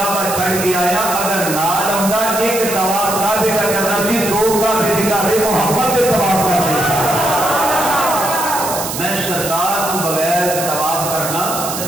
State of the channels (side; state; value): right; noise; hiss, 6 dB below the sound